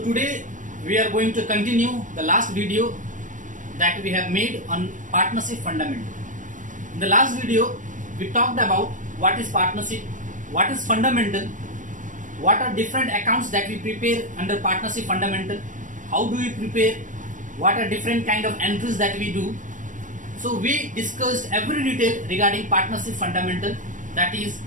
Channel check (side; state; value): left; late; 0.37 ms